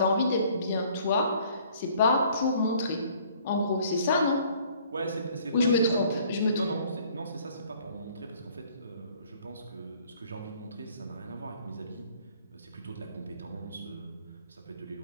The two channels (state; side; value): inverted; both; correlation -0.58